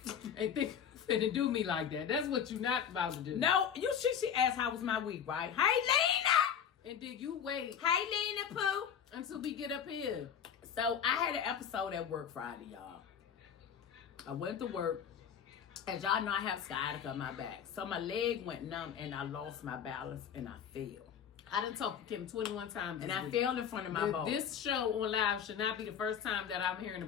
think you're finna do me like that. That's what you're not about to do. No, she asked how was my week, right? Hey, Lena. And then you wait Hey, Lena Pooh. until we get up here. So I had an episode at work Friday, y'all. I went to work. As y'all know, I have sciatica on my back. So my leg went numb and I lost my balance and I fell. I done talked to Kim 21 times. And this I week. fell in front of my boss. This show on live should not be the first time that I'm hearing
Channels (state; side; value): quieter; right; 8.2 dB